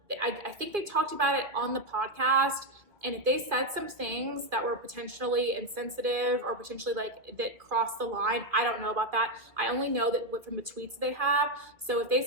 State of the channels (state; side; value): late; left; 2.2 ms